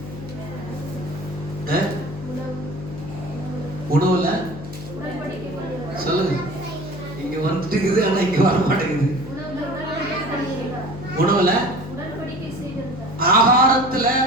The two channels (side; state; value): left; noise; hum, 12 dB below the sound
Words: உணவுல சொல்லுங்க. இங்க வந்துட்டு இருக்குது, ஆனா இங்க வர மாட்டேங்குது. உணவுல, ஆகாரத்துல